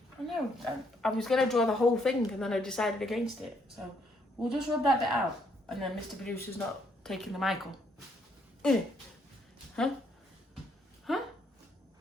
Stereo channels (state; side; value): normal; both; correlation 0.71